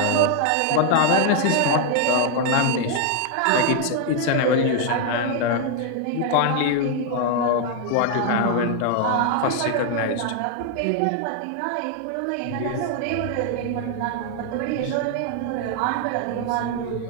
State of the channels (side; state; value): both; different; correlation 0.00